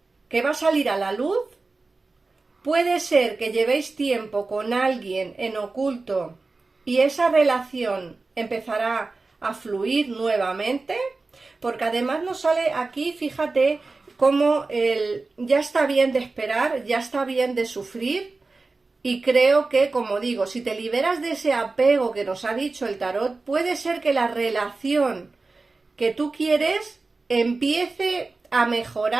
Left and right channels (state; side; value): quieter; left; 3.7 dB